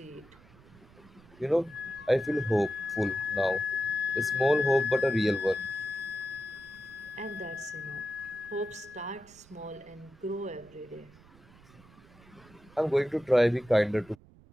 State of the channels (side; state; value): right; noise; rumble, 25 dB below the sound